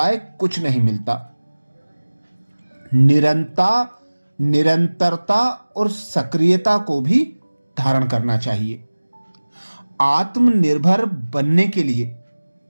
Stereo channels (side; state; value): both; inverted; correlation -1.00